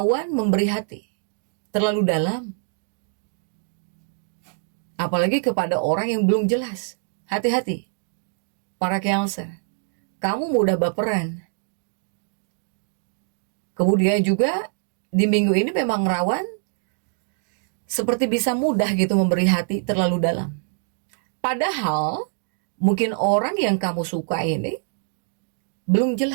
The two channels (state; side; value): silent; left; digital silence